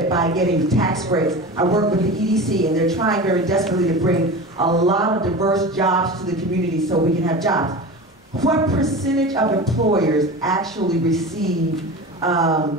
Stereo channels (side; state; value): both; normal; correlation 0.31